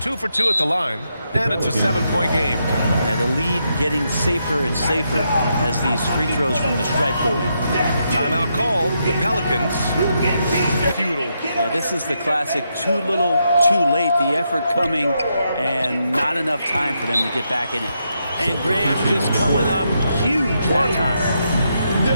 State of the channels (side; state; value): both; inverted; correlation -0.81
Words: for 2 at the line, and it's a 7-point game. And the lead getting safer and safer as these free throws from the stripe go in. Timeout called. The Pelicans. Futile. Yeah, this is the classic too little, too late. The effort coming and not enough time for them to get back in it. And Graham just coming up huge that time.